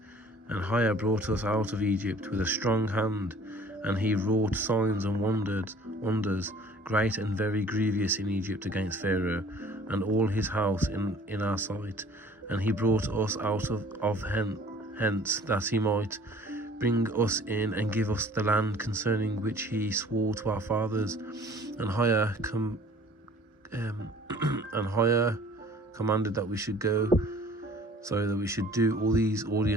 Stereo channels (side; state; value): both; normal; correlation 0.51